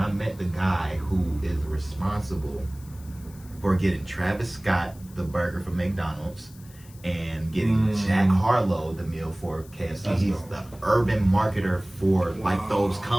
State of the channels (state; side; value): noise; left; hiss, 23 dB below the sound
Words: met the guy who is responsible for getting Travis Scott the burger from McDonald's and getting Jack Harlow the meal for KFC. That's He's dope. the urban marketer for like those